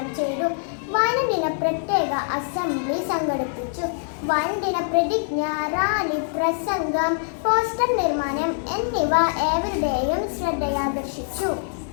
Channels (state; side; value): silent; right; digital silence